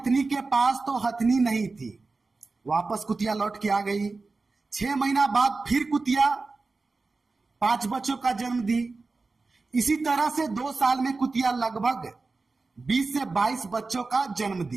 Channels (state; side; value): quieter; left; 3.8 dB